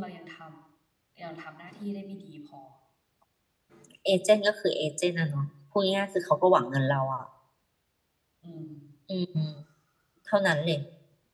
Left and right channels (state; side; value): identical; both; correlation 1.00